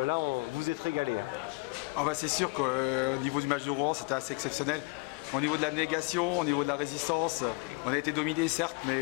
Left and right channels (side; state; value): right; quieter; 27.8 dB